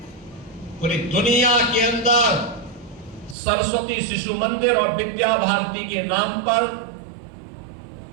पूरी दुनिया के अंदर सरस्वती शिशु मंदिर और विद्या भारती के नाम पर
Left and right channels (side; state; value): left; drops out; at 3.4 s